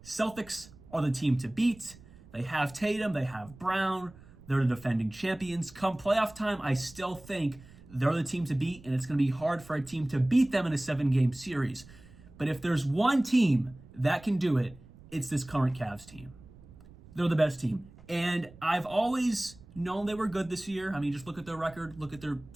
Celtics are the team to beat. They have Tatum, they have Brown, they're the defending champions. Come playoff time, I still think they're the team to beat, and it's going to be hard for a team to beat them in a 7-game series. But if there's one team that can do it, it's this current Cavs team. They're the best team. And I've always known they were good this year. I mean, just look at their record, look at their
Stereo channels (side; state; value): right; noise; rumble, 21 dB below the sound